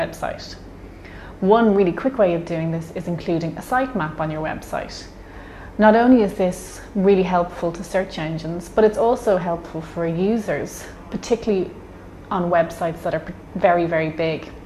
One really quick way of doing this is including a sitemap on your website. Not only is this really helpful to search engines, but it's also helpful for users, particularly on websites that are very, very big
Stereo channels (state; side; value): identical; both; correlation 1.00